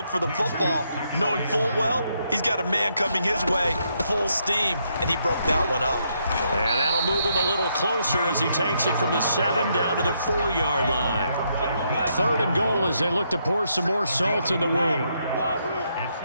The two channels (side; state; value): both; inverted; correlation -0.76